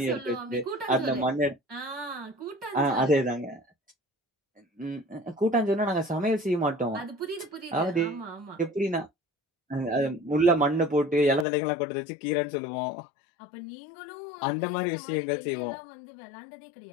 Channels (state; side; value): drops out; right; at 11.5 s